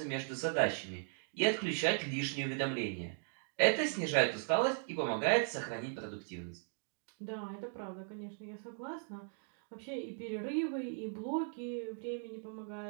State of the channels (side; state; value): left; silent; 53 dB below the other